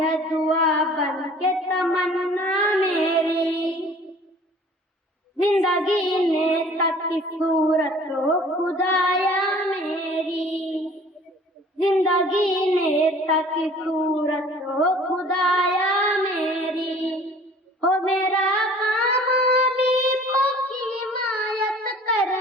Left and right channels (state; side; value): normal; both; correlation 0.49